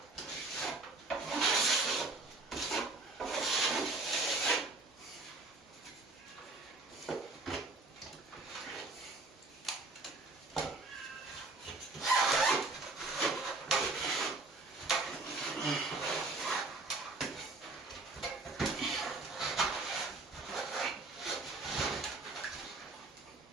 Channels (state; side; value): quieter; left; 3.3 dB